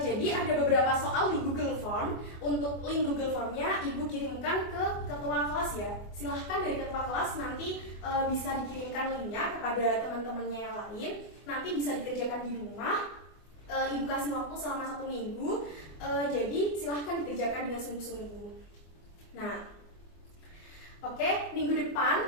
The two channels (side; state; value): right; late; 24 ms